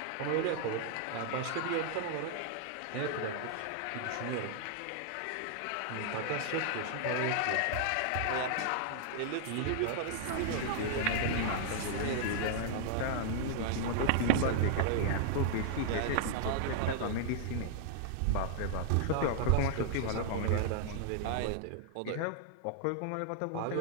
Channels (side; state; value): both; different; correlation -0.01